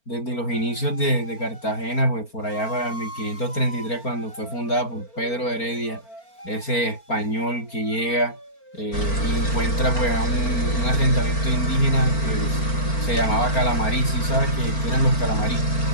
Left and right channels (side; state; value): right; late; 4.4 ms